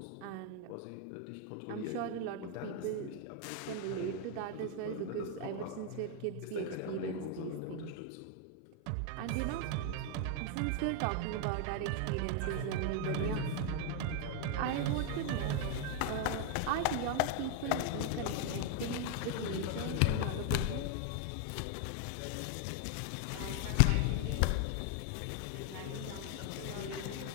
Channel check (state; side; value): different; both; correlation 0.00